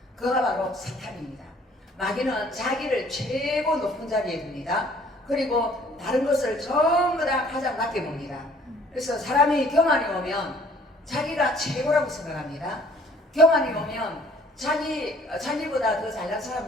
그가 바로 사탄입니다. 마귀는 자기를 최고 높은 자리에 둡니다. 그리고 다른 것을 전부 다 가장 낮게 봅니다. 그래서 사람이 교만이 오면 자기가 최고라고 생각합니다. 교만이 오면 자기보다 더 잘난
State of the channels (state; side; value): normal; both; correlation 0.57